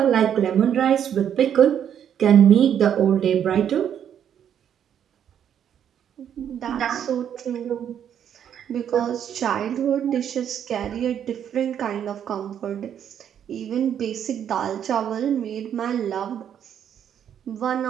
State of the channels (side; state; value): left; quieter; 9.2 dB